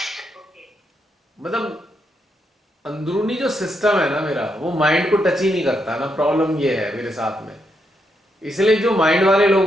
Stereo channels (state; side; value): normal; both; correlation 0.80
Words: मतलब अंदरूनी जो सिस्टम है ना मेरा, वो माइंड को टच ही नहीं करता ना। प्रॉब्लम ये है मेरे साथ में। इसलिए जो माइंड वाले लोग